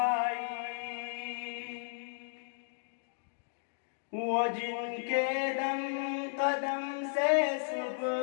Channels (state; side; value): silent; right; digital silence